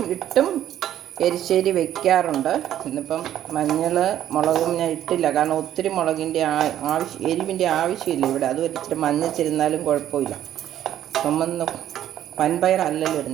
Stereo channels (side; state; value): left; quieter; 11.5 dB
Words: ഇട്ടും എരിശ്ശേരി വെക്കാറുണ്ട്. ഇന്നിപ്പം മഞ്ഞൾ മുളകും ഞാൻ ഇട്ടില്ല, കാരണം ഒത്തിരി മുളകിൻ്റെ എരിവിൻ്റെ ആവശ്യമില്ല ഇവിടെ. അത് ഇച്ചിരി മഞ്ഞച്ചിരുന്നാലും കുഴപ്പമില്ല. ചുമന്ന് വൻപയറല്ലല്ലോ